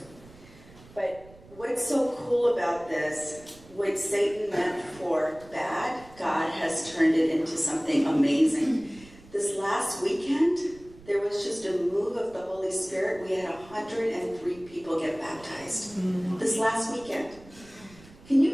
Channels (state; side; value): noise; right; rumble, 22 dB below the sound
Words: But what's so cool about this, what Satan meant for bad, God has turned it into something amazing. This last weekend, there was just a move of the Holy Spirit. We had 103 people get baptized. This last weekend. Can you